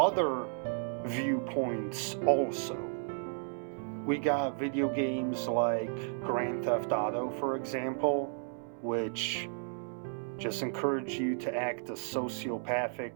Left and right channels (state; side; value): silent; left; 56 dB below the other